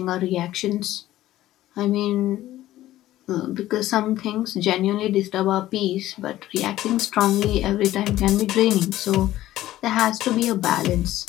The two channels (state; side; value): quieter; right; 14.6 dB